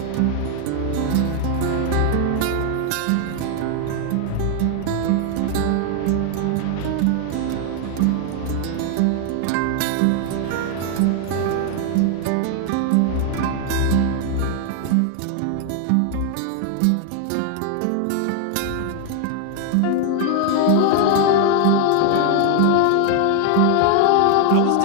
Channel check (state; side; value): different; both; correlation 0.00